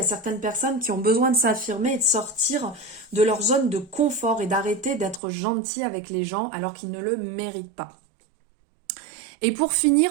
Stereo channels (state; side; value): drops out; left; at 5.2 s